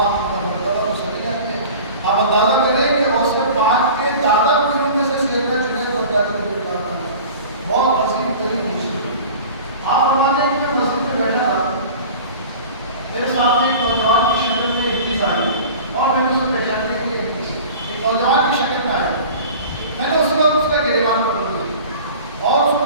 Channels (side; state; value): both; inverted; correlation -0.40